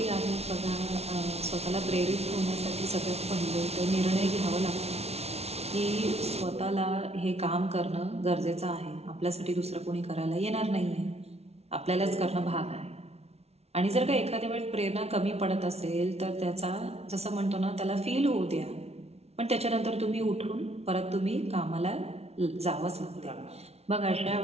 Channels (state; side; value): late; left; 0.31 ms